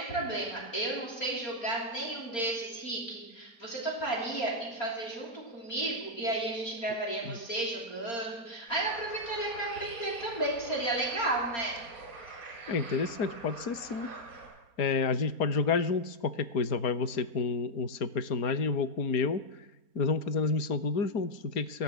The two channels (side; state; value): right; late; 4.3 ms